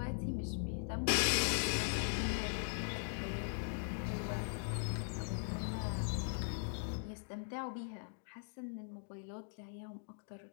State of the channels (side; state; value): right; silent; digital silence